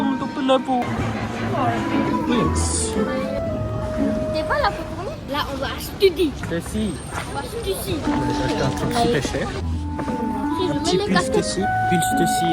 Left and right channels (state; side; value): identical; both; correlation 1.00